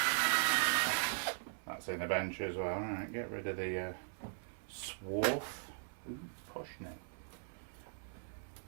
That's in the bench as well. Alright, get rid of the swarf. Ooh, posh neck.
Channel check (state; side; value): silent; left; 51 dB below the other